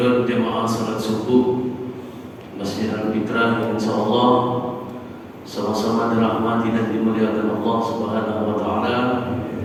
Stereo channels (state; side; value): identical; both; correlation 1.00